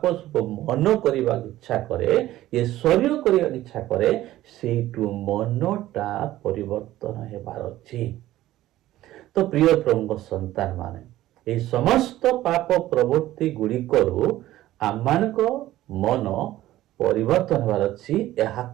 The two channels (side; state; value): left; quieter; 14.9 dB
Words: ସବୁ ମନ କରିବାକୁ ଇଚ୍ଛା କରେ, ଏ ଶରୀର କରିବାକୁ ଇଚ୍ଛା କରେ, ସେଇଠୁ ମନଟା ପରିବର୍ତ୍ତନ ହେବାର ଅଛି। ତ ପ୍ରିୟ ପ୍ରଭୁଙ୍କ ସନ୍ତାନ ମାନେ, এই ସମସ୍ତ ପାପ ପ୍ରବୃତ୍ତି ଗୁଡ଼ିକରୁ ଆମମାନଙ୍କ ମନ ପରିବର୍ତ୍ତନ ହେବାର ଅଛି।